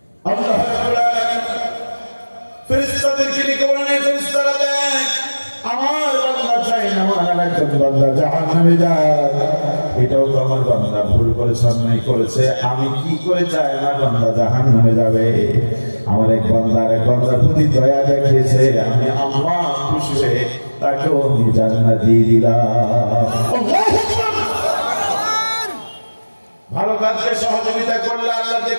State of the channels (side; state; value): both; inverted; correlation -1.00